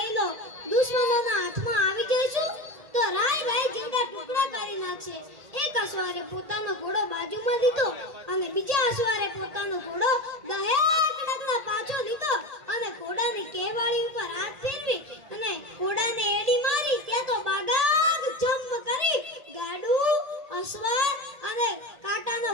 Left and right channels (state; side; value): late; left; 1.8 ms